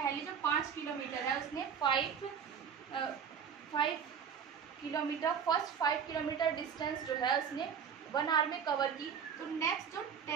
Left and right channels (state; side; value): quieter; left; 7.3 dB